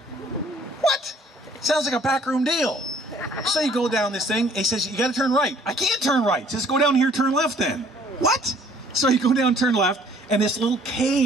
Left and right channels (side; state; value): both; normal; correlation 0.58